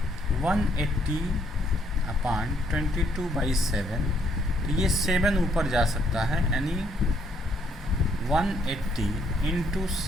180/22/7। तो ये 7 ऊपर जा सकता है, यानी 180 ×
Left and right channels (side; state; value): both; normal; correlation 0.69